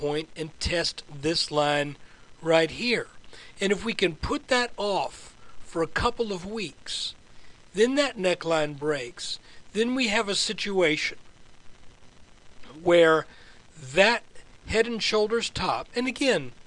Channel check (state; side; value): identical; both; correlation 1.00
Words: and test this line right here. And if we can put that off for a couple of weeks, then that neckline breaks, then we have a situation where that head and shoulders top, and again,